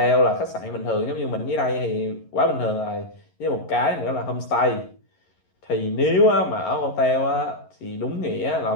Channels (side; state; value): right; late; 11 ms